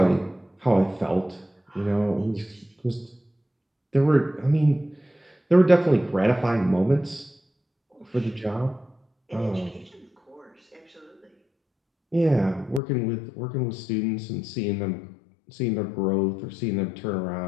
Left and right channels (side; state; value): right; drops out; at 12.8 s